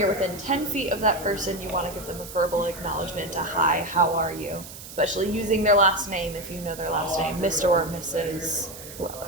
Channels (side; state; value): right; noise; hiss, 14 dB below the sound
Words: within 10 feet of that person, you want to give them a verbal acknowledgement, a hi, how are you? Especially using their last name if you know their last name, Mr. or Mrs. whoever.